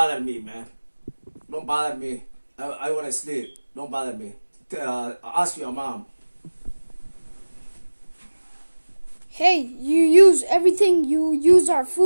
me, man. Don't bother me. I want to sleep. Don't bother me. Ask your mom. Hey, you use everything. You use our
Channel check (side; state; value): both; inverted; correlation -1.00